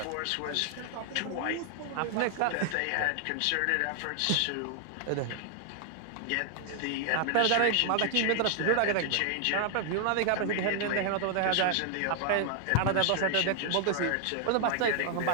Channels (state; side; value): different; both; correlation 0.00